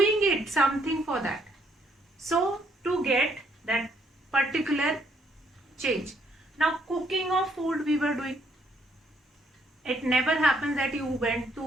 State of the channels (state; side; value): normal; both; correlation 0.70